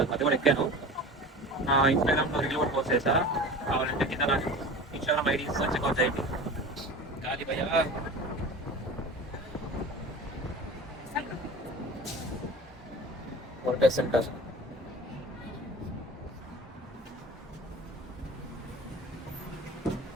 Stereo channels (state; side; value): normal; both; correlation 0.36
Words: అది కూడా ఎక్కాను. నా ఇన్స్టాగ్రామ్లో రీల్ కూడా పోస్ట్ చేశా, కావాలంటే కింద నా ఇన్స్టాగ్రామ్ ఐడి చెక్అవుట్ చేయండి. గాలి భయ వర్కర్ సెంటర్.